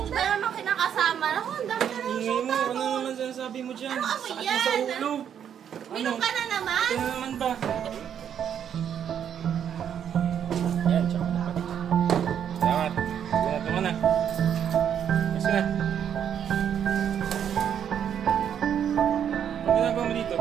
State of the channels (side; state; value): left; quieter; 8.8 dB